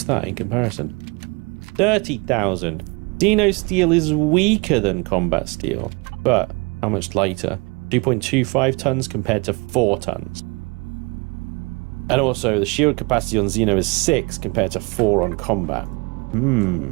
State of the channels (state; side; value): quieter; left; 28.9 dB